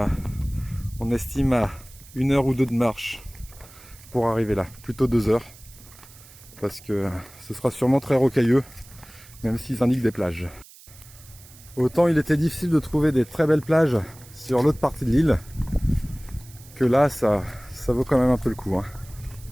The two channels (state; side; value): noise; right; hiss, 22 dB below the sound